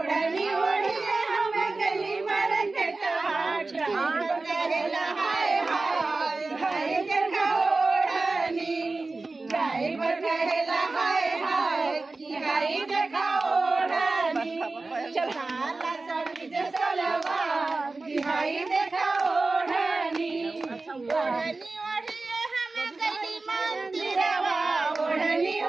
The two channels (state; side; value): quieter; left; 3.5 dB